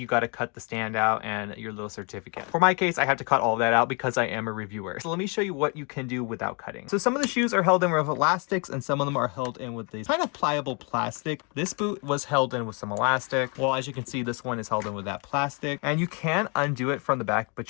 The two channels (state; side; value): quieter; right; 33.8 dB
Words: got to cut the stand out and your little certificate. For my case, I have to cut all of that out because I am a reviewer. So let me show you what you can do without cutting. So some of the shoes are held in with elastics and some of them are held in with these kind of pliable plastic. This boot was held in with some elastic. Well, as you can see, this one is held in with that plastic. And you can undo it from the back, but